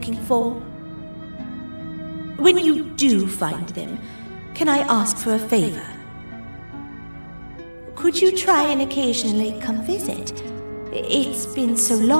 for. When you do find them, can I ask for a favor? Could you try and occasionally come visit? It's been so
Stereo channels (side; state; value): both; inverted; correlation -1.00